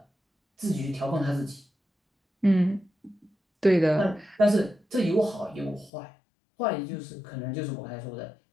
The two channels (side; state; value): right; drops out; at 5.9 s